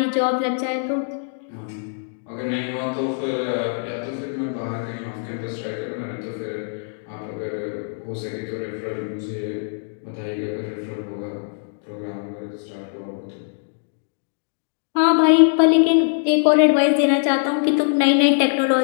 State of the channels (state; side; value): silent; right; digital silence